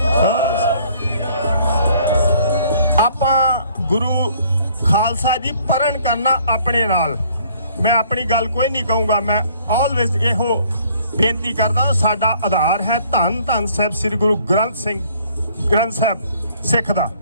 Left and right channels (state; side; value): inverted; both; correlation -0.60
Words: ਆਪਾਂ ਗੁਰੂ ਖਾਲਸਾ ਜੀ ਪਰਨ ਕਰਨਾ ਆਪਣੇ ਨਾਲ। ਮੈਂ ਆਪਣੀ ਗੱਲ ਕੋਈ ਨਹੀਂ ਕਹੂੰਗਾ, ਮੈਂ ਆਲਵੇਜ਼ ਇਹੋ ਬੇਨਤੀ ਕਰਦਾ। ਸਾਡਾ ਆਧਾਰ ਹੈ ਧੰਨ ਧੰਨ ਸਾਹਿਬ ਸ੍ਰੀ ਗੁਰੂ ਗ੍ਰੰਥ ਸਾਹਿਬ ਸਿੱਖ ਦਾ।